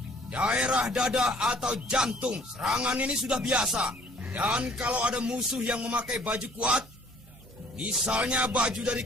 daerah dada atau jantung. Serangan ini sudah biasa. Dan kalau ada musuh yang memakai baju kuat, misalnya baju dari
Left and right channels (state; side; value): normal; both; correlation 0.57